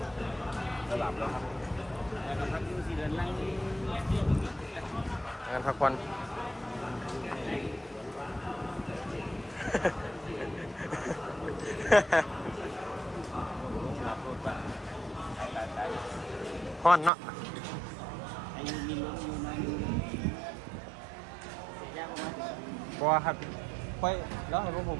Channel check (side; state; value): left; drops out; at 17.1 s